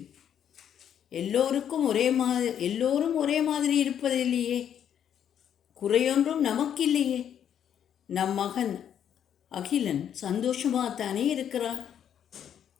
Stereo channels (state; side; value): quieter; right; 9.2 dB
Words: எல்லோரும் ஒரே மாதிரி இருப்பதில்லையே, குறையொன்றும் நமக்கில்லையே. நம் மகன் அகிலன் சந்தோஷமாகத்தானே இருக்கிறான்.